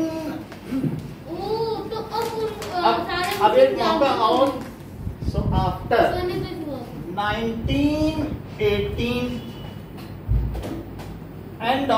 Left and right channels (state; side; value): identical; both; correlation 1.00